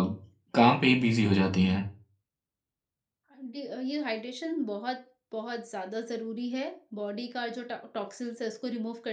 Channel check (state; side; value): identical; both; correlation 1.00